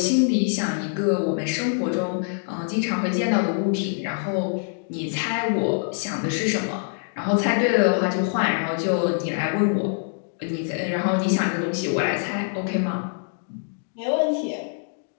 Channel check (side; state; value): right; silent; digital silence